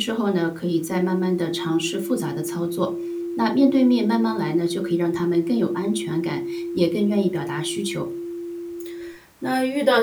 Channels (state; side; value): identical; both; correlation 1.00